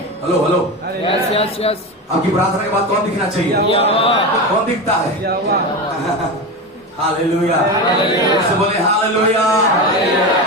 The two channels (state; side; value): normal; both; correlation 0.21